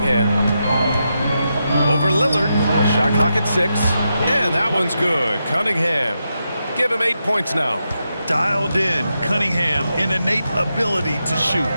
Over Lillard. Shot clock at 6. And that one's good. Cunningham. Give him 8 points now. Dialed in, Cunningham, an innate ability to shoot.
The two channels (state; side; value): inverted; both; correlation -0.86